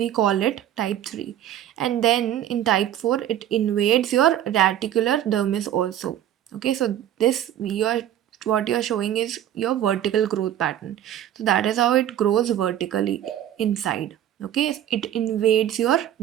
call it type 3. And then in type 4, it invades your reticular dermis also. Okay, so this what you're showing is your vertical growth pattern. So that is how it grows vertically inside. Okay, it invades your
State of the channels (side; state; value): left; quieter; 11.4 dB